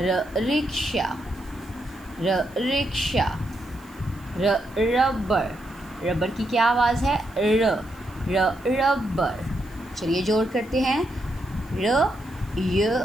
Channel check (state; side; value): noise; right; hiss, 27 dB below the sound